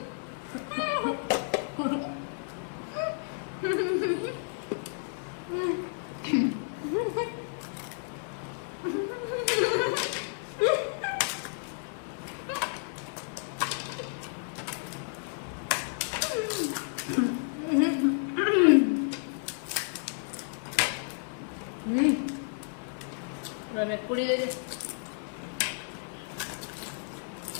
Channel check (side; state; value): right; silent; digital silence